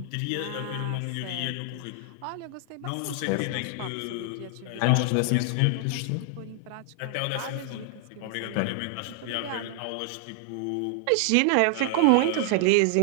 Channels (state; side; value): different; both; correlation 0.00